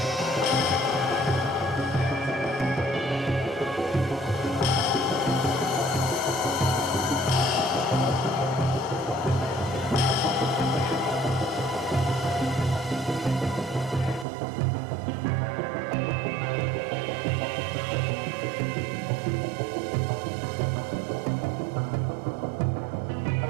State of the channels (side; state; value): left; drops out; at 14.2 s